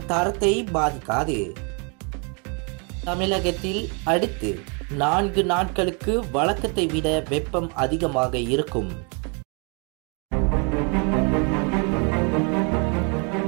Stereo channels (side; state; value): left; quieter; 35.2 dB